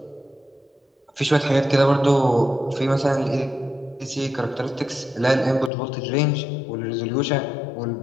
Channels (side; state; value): right; drops out; at 5.7 s